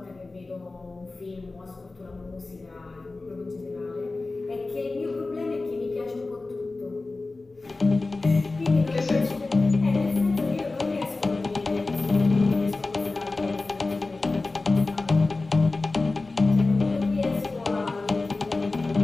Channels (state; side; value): quieter; right; 3.4 dB